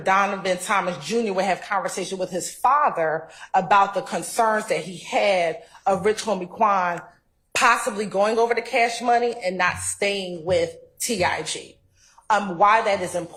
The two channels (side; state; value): both; identical; correlation 1.00